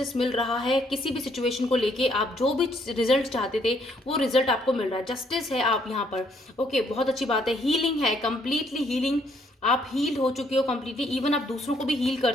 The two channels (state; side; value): normal; both; correlation 0.68